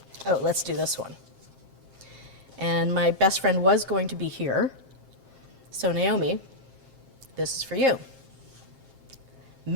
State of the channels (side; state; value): left; late; 7.5 ms